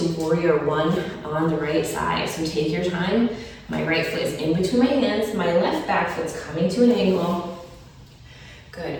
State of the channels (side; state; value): both; identical; correlation 1.00